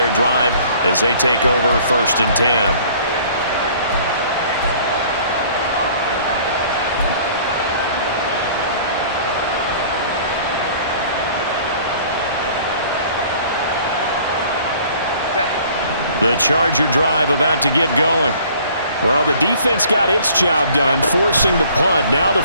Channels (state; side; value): inverted; both; correlation -0.53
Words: drive as they take over 1st and 10. The Charger drive about to get going. Well, the defense got its job done, forcing the punt. Now the